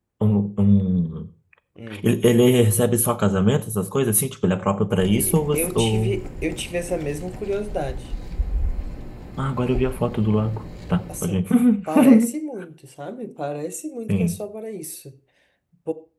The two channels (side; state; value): both; identical; correlation 1.00